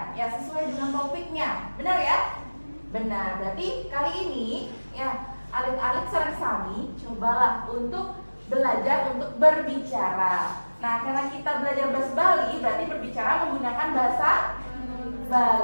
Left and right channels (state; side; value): inverted; both; correlation -1.00